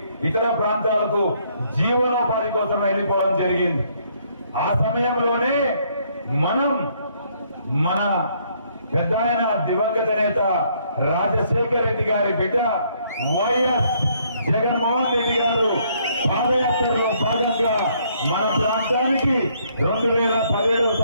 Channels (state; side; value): inverted; both; correlation -0.68